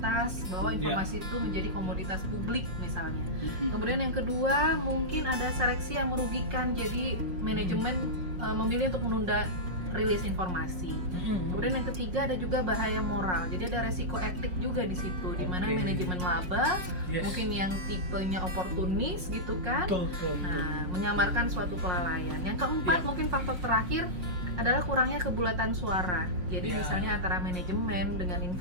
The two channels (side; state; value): left; late; 5.5 ms